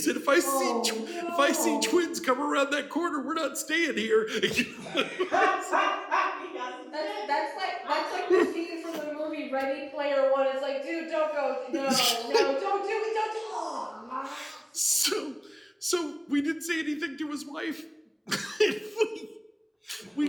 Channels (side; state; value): both; identical; correlation 1.00